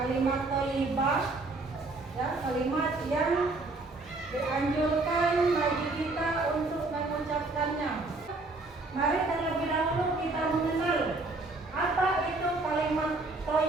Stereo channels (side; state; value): left; quieter; 3.2 dB